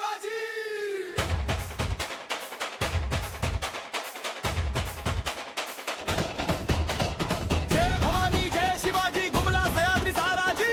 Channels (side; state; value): both; identical; correlation 1.00